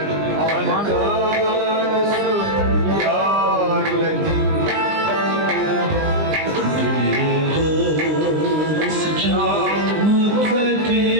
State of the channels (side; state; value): left; late; 20 ms